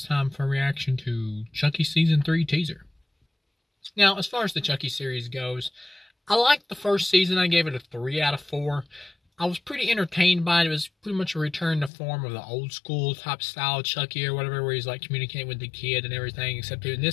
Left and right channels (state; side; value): drops out; right; at 11.9 s